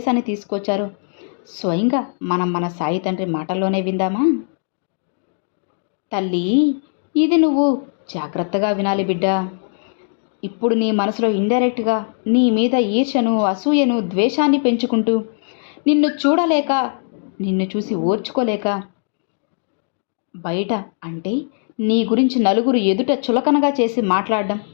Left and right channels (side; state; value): right; silent; digital silence